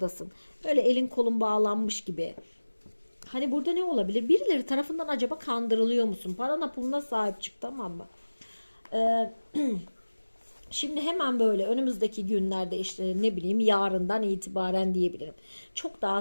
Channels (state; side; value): inverted; both; correlation -1.00